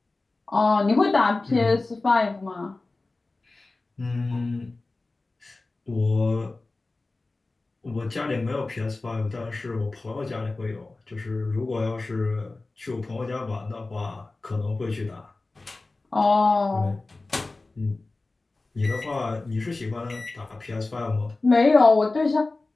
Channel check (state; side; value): quieter; right; 3.3 dB